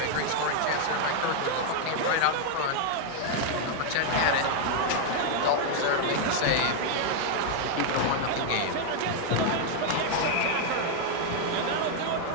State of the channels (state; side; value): different; both; correlation 0.00